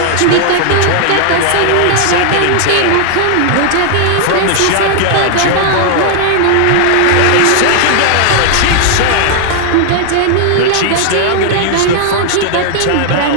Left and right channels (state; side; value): different; both; correlation 0.00